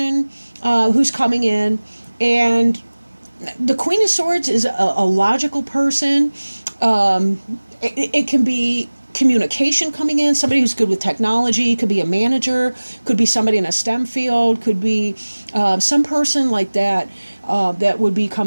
who's coming in, and the Queen of Swords is a logical person. It can be communication coming in, somebody who's good with technology, could be a manager, could be somebody in a STEM field, could be some person like that that would be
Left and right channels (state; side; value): inverted; both; correlation -1.00